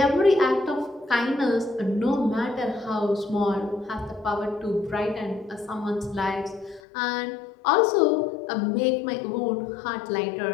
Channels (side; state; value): right; drops out; at 6.8 s